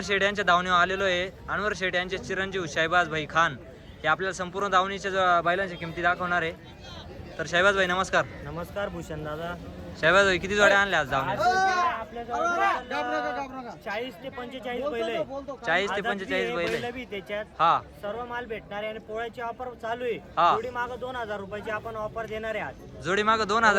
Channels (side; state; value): both; identical; correlation 1.00